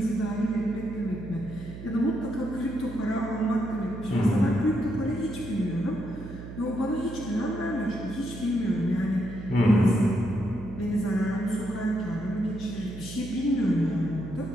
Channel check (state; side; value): noise; right; hum, 11 dB below the sound